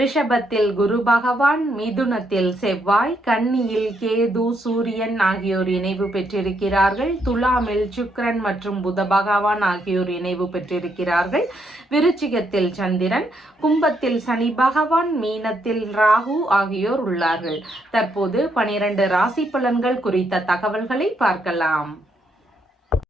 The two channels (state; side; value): normal; both; correlation 0.76